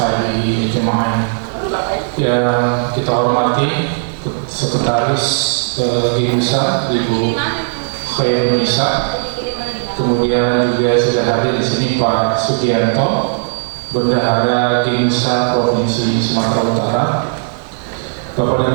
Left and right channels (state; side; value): silent; left; digital silence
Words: ajma'in. Yang kita hormati Sekretaris GIMSA Ibu Khairun Nisa, kemudian juga sudah hadir di sini Pak Sugianto, Bendahara GIMSA Provinsi Sumatera Utara. Bapak